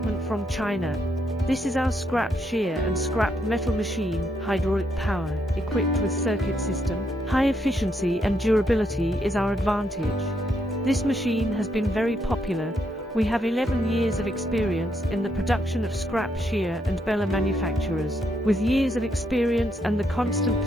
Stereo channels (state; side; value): normal; both; correlation 0.77